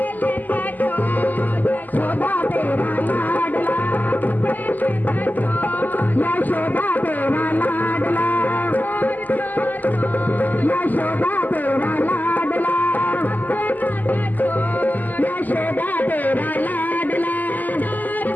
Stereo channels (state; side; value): late; right; 0.084 ms